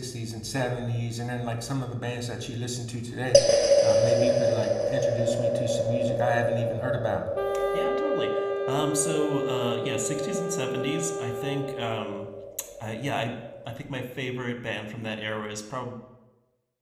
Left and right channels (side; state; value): both; identical; correlation 1.00